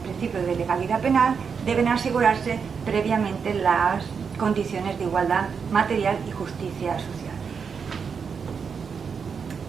de legalidad penal, deben asegurarse previamente las condiciones de igualdad material y justicia social.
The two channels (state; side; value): quieter; left; 6.1 dB